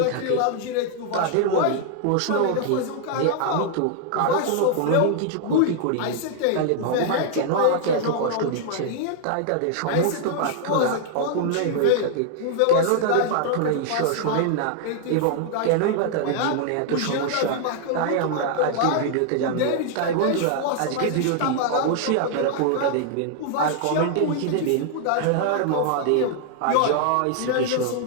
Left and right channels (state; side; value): different; both; correlation 0.00